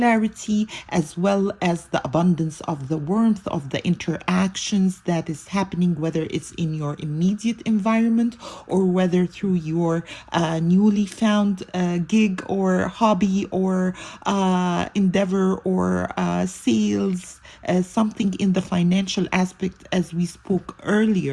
as well as the abundance of the warmth of the interactions that is happening, whether it's in your immediate environment or whether through your newly found gig or hobby or endeavor or sales, something in the financial aspect as we spoke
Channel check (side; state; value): both; identical; correlation 1.00